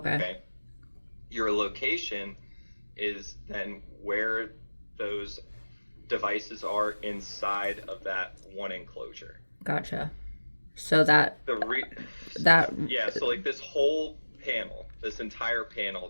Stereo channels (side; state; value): both; inverted; correlation -1.00